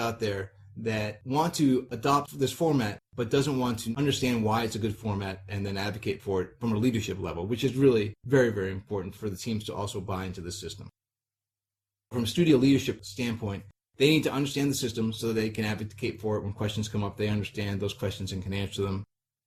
there that want to adopt this format but doesn't want to understand why it's a good format and then advocate for it from a leadership level, which is really very, very important for the teams to also buy into the system. From a studio leadership standpoint, they need to understand the system so that they can advocate for it when questions come up. They understand those questions and can answer them.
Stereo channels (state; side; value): identical; both; correlation 1.00